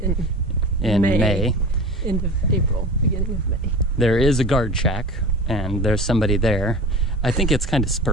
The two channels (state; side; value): normal; both; correlation 0.35